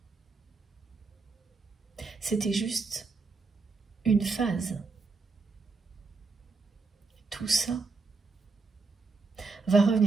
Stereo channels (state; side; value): quieter; left; 4.2 dB